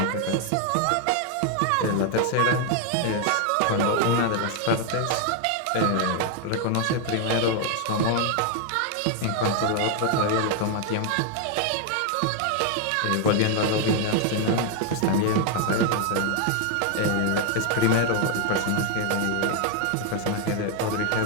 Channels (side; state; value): both; different; correlation 0.01